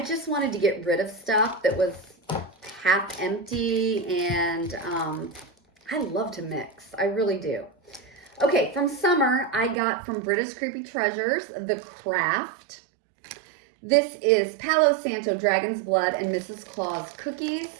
wanted to get rid of stuff that was half empty, and I love to mix. I really do. Okay, from summer, I got from Brita's Creepy Treasures, The Craft. This is Palo Santo Dragon's Blood and Mrs. Claus cookies.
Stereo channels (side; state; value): left; drops out; at 9.8 s